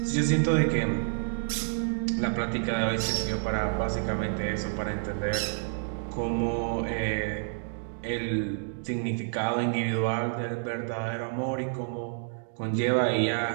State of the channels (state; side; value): silent; left; digital silence